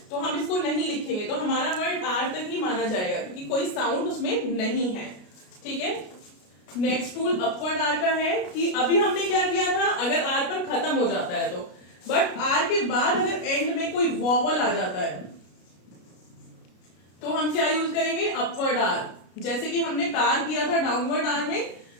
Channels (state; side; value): late; right; 33 ms